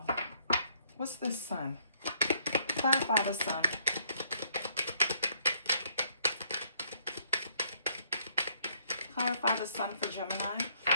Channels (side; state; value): both; inverted; correlation -0.69